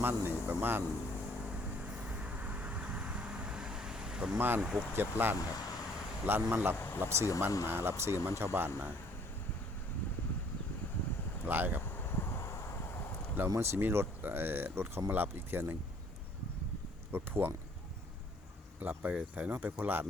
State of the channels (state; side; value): normal; both; correlation 0.60